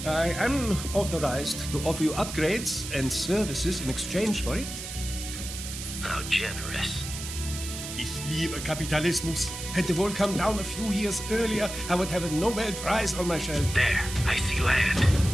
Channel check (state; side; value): noise; right; hiss, 8 dB below the sound